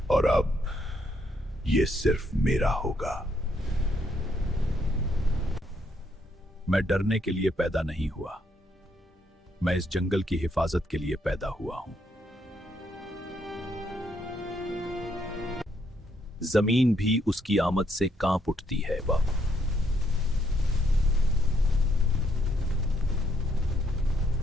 और अब ये सिर्फ मेरा होगा। मैं डरने के लिए पैदा नहीं हुआ, मैं इस जंगल की हिफाजत के लिए पैदा हुआ हूं। जमीन भी उसकी आमद से कांप उठती है बाबा।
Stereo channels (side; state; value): both; normal; correlation 0.73